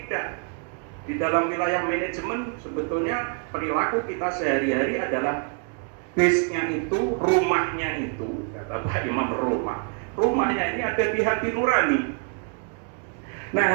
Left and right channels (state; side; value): quieter; left; 39.2 dB